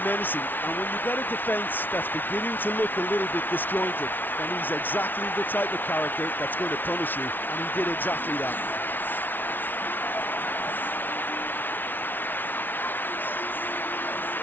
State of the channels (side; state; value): right; late; 0.091 ms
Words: menacing, and when you get a defence that's beginning to look a little bit disjointed, then he's exactly the type of character that's going to punish you, and he did exactly that.